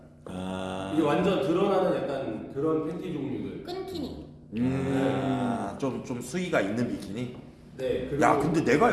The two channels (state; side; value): identical; both; correlation 1.00